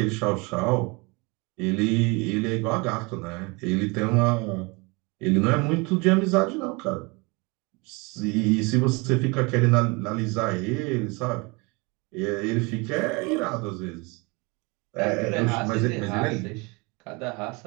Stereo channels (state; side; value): quieter; left; 27.8 dB